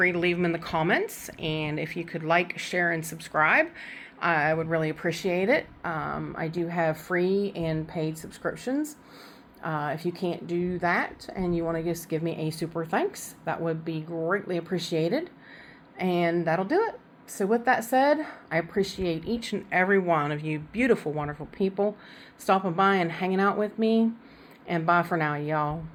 to leave them in the comments. And if you could like, share, and subscribe, I would really appreciate it. I do have free and paid subscriptions. If you can't do that and you want to just give me a super thanks, that would be greatly appreciated. And that'll do it. So with that said, I appreciate each and every one of you beautiful, wonderful people stopping by and hanging out with me. And bye for now, y'all.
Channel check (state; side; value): identical; both; correlation 1.00